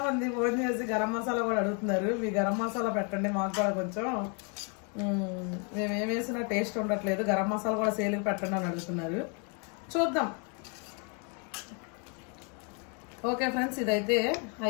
మంది ఫోన్ చేసి గరం మసాలా కూడా అడుగుతున్నారు. మీ గరం మసాలా పెట్టండి మాకు కూడా కొంచెం, మేము ఏం వేసినా టేస్ట్ ఉండట్లేదు, గరం మసాలా కూడా సేల్కి పెట్టండి అని అడుగుతున్నారు. చూద్దాం. ఓకే ఫ్రెండ్స్, ఇదైతే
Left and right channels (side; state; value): right; quieter; 36.8 dB